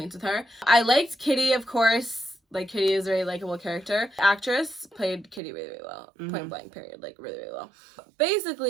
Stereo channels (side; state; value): left; drops out; at 5.4 s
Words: with her. I liked Kitty, of course. Like Kitty is a very likable character. The actress played Kitty really, really well. Point blank period. Like really, really well.